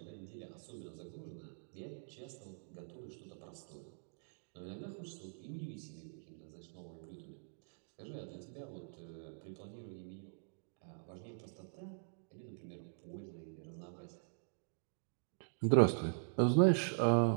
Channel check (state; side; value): silent; left; digital silence